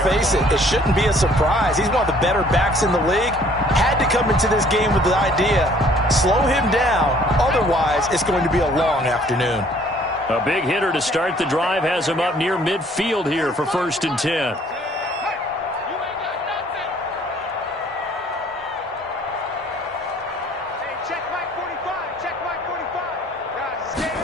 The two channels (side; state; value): both; normal; correlation 0.58